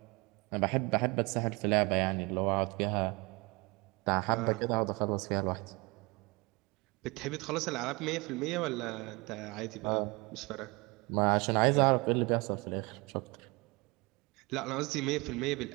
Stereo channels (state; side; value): quieter; left; 26.2 dB